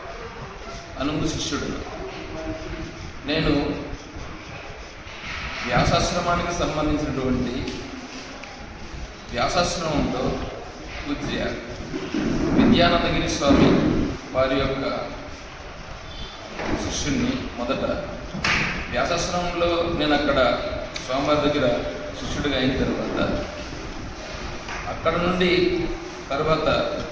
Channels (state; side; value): identical; both; correlation 1.00